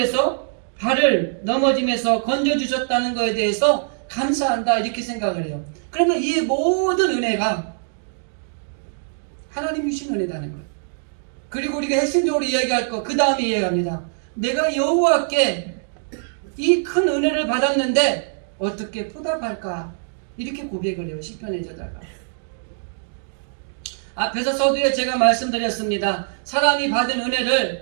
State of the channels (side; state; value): left; silent; digital silence